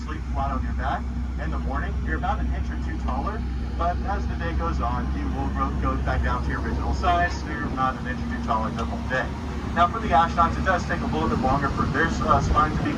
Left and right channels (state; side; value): identical; both; correlation 1.00